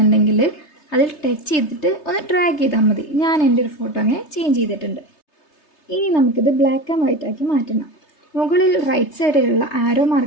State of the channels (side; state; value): right; late; 3.3 ms